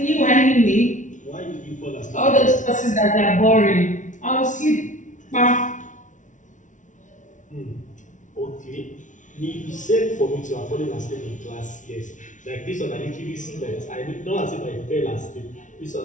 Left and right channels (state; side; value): late; right; 0.37 ms